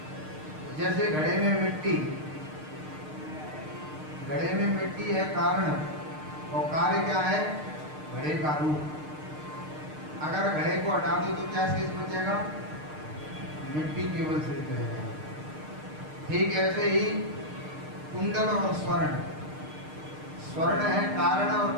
जैसे घड़े में मिट्टी है कारण, और कार्य क्या है? घड़े का रूप। अगर घड़े को हटा दो तो क्या शेष बचेगा? मिट्टी केवल शेष रहेगा। ठीक ऐसे ही कुंडल और स्वर्ण है कारण और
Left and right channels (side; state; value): left; late; 6.6 ms